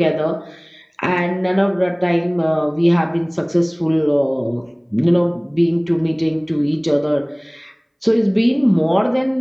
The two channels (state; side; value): identical; both; correlation 1.00